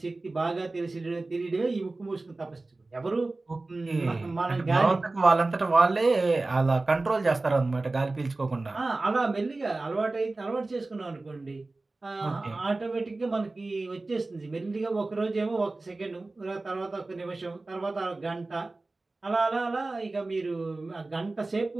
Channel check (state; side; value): quieter; left; 3.2 dB